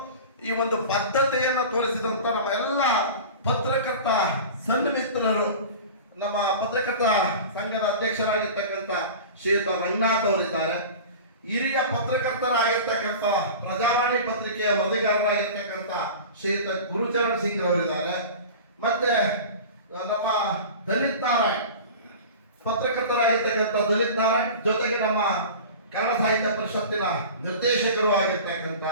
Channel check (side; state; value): both; inverted; correlation -0.35